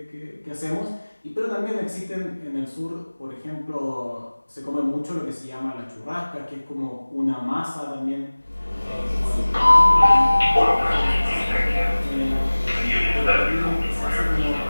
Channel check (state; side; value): inverted; both; correlation -1.00